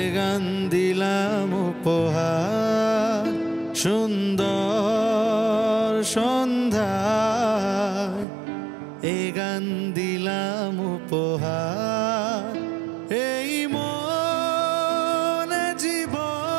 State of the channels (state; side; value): drops out; left; at 8.2 s